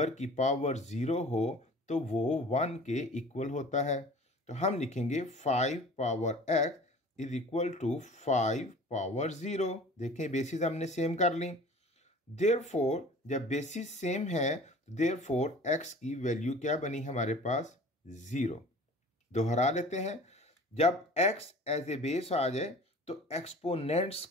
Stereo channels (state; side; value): normal; both; correlation 0.44